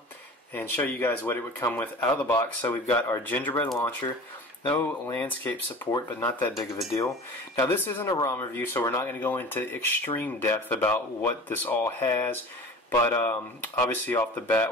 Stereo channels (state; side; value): normal; both; correlation 0.38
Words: and show you guys what it would come with out of the box. So we've got our Gingerbread launcher, no landscape support, but not that big of a deal. Now this isn't a ROM review, so we're not going to go into extreme depth about what this all has. But obviously off the